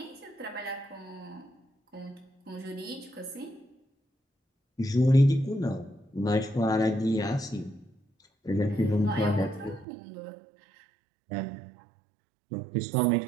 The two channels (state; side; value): drops out; left; at 9.9 s